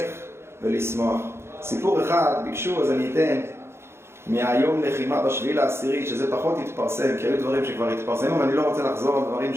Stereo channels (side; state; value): left; late; 0.12 ms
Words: ולשמוח. סיפור אחד ביקשו, אז אני אתן מהיום לחימה בשביעי לעשירי, שזה פחות התפרסם, כי היו דברים שכבר התפרסמו, ואני לא רוצה לחזור על דברים